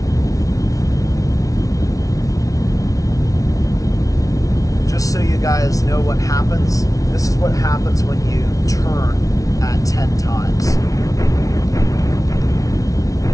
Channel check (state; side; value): late; right; 0.17 ms